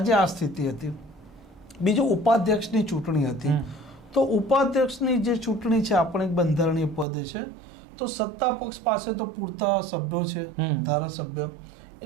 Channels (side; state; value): left; drops out; at 7.1 s